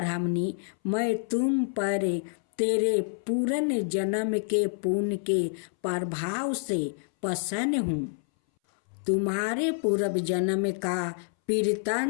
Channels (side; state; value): right; silent; 60 dB below the other